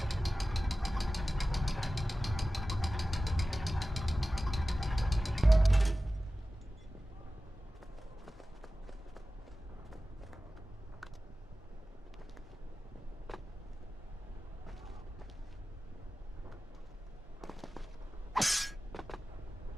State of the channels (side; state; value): both; normal; correlation 0.95